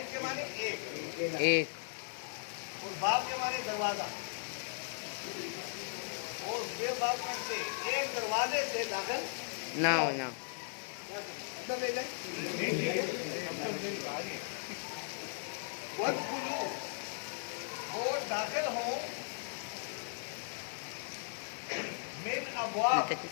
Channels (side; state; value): right; silent; digital silence